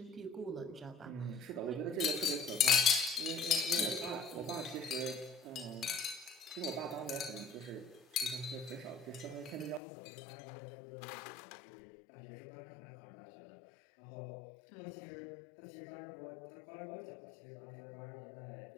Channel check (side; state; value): right; drops out; at 9.8 s